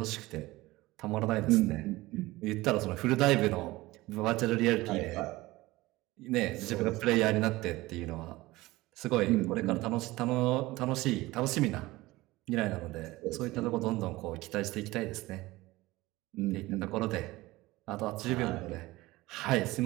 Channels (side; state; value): left; quieter; 19.4 dB